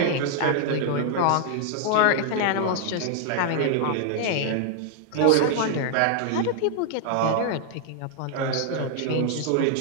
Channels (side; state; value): both; different; correlation -0.01